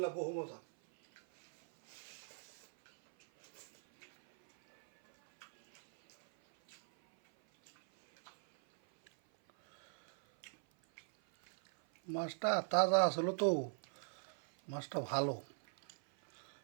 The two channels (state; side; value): silent; left; 50 dB below the other